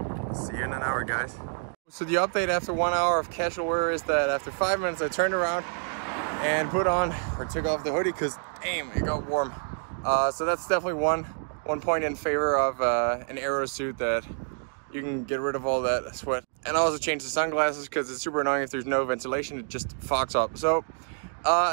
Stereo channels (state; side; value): silent; left; 57 dB below the other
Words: See you in an hour, guys. So the update after 1 hour of casual wear is that after 5 minutes I turned around and put on or took off the hoodie because damn, it got warm. So that's definitely one point in favor of an aero suit, that you can get rid of all that sweat. And I also changed the sunglasses because it's super annoying if there's no ventilation, it just fogs up. So